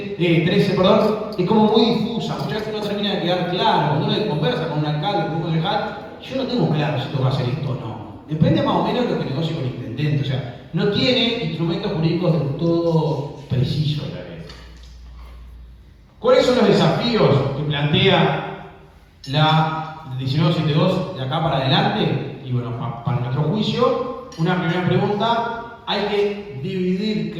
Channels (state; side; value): identical; both; correlation 1.00